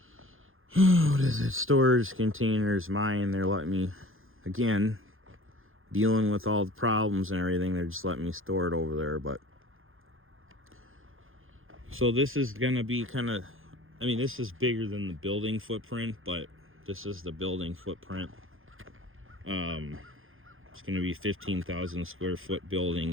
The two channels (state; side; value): late; left; 0.60 ms